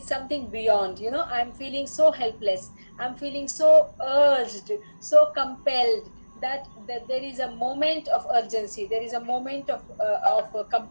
something beyond. You know, I'm feeling so helpless. I'm feeling so urged, so compelled that there is a moment of urgency. There is a moment of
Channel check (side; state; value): both; inverted; correlation -1.00